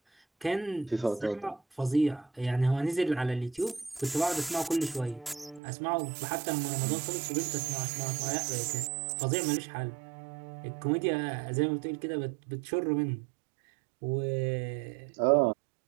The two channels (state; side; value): drops out; left; at 5.6 s